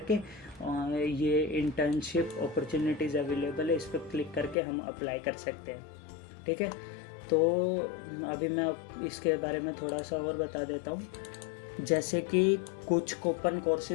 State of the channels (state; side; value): drops out; right; at 4.5 s